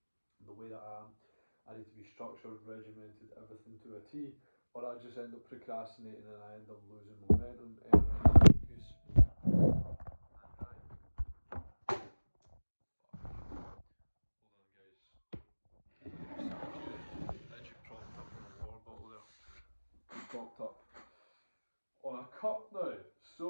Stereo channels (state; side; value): inverted; both; correlation -1.00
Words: The way that I need to be structured, regimented, everything to a T, or I just end up procrastinating and I end up losing momentum, energy, focus. Hold on, guys. Edgy propped up on the water bottle there. Propped up on a cup now. So,